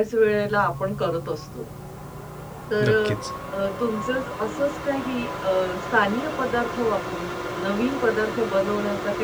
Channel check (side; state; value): both; identical; correlation 1.00